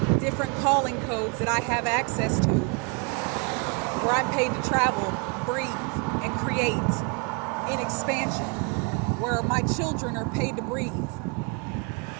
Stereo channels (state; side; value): quieter; left; 34.3 dB